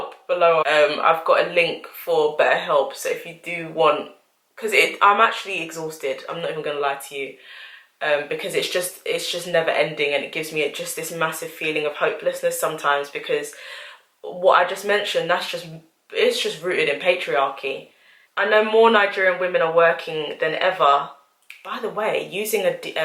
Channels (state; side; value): identical; both; correlation 1.00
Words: below. I've got a link for BetterHelp, so if you do want, because I'm actually exhausted, I'm not even gonna lie to you. Because it's just never ending, and it gives me just this massive feeling of hopelessness sometimes, because what I just mentioned, it's just rooted in patriarchy. I know more Nigerian women are working than ever. By the way, using